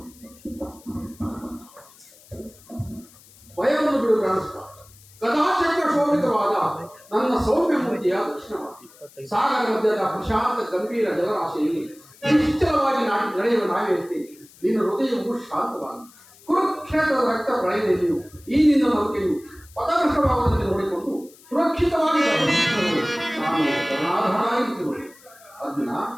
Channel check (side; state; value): left; noise; hiss, 25 dB below the sound